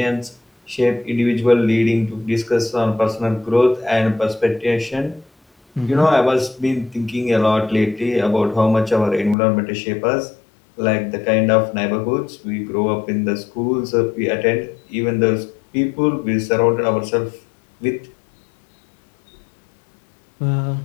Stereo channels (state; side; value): drops out; right; at 9.3 s